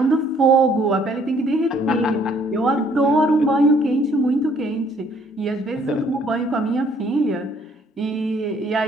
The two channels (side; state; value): both; normal; correlation 0.62